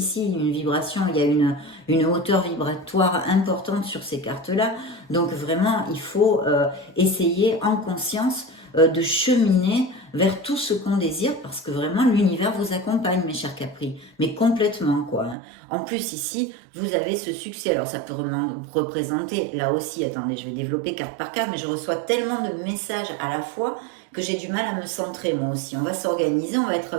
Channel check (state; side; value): drops out; left; at 15.4 s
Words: une vibration, il y a une hauteur vibratoire importante sur ces cartes-là. Donc vraiment, il faut essayer en conscience de cheminer vers tout ce qu'on désire parce que vraiment l'univers vous accompagne, mes chers Capri, mais complètement quoi. Hein. En plus ici, vous avez ce succès. Alors ça peut représenter, là aussi, attendez, je vais développer carte par carte, mais je reçois tellement de messages à la fois que j'ai du mal à me centrer moi aussi. On va s'organiser, on